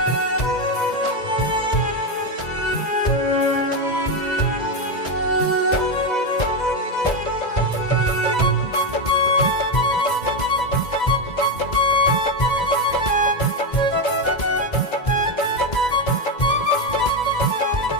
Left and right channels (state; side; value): late; right; 2.0 ms